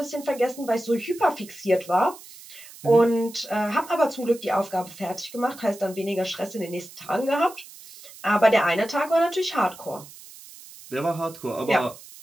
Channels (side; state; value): right; noise; hiss, 18 dB below the sound